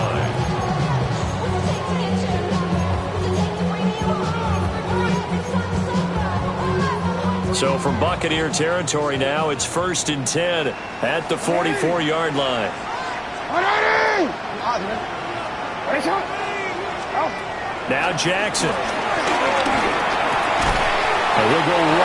So from Buccaneer territory now, it's 1st and 10 at the 44-yard line. Now Jackson. And he'll go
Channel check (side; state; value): both; identical; correlation 1.00